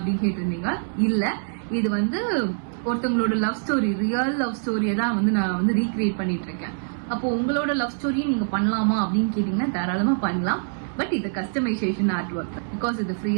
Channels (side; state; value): left; silent; digital silence